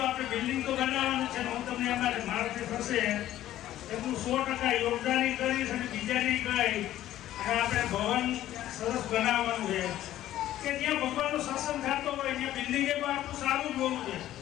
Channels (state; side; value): quieter; right; 13.4 dB